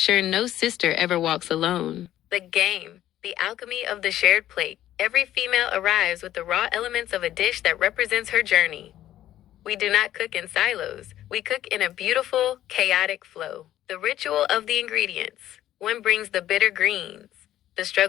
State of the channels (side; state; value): right; quieter; 12.8 dB